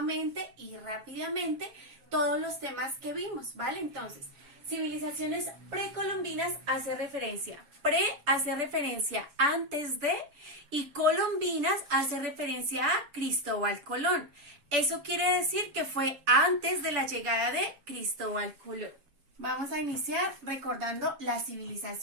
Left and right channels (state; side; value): late; left; 7.0 ms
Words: y rápidamente todos los temas que vimos, ¿vale? Entonces, civilizaciones precolombinas hace referencia antes de, y colombinas hace referencia a Cristóbal Colón. Eso quiere decir que fue antes de la llegada de Cristóbal Colón. Vamos a iniciar recordando la